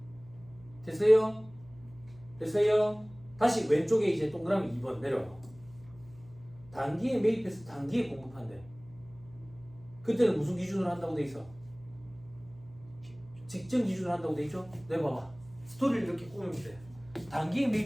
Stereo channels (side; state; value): right; noise; hum, 22 dB below the sound